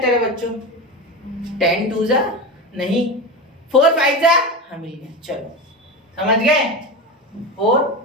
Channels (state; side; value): normal; both; correlation 0.23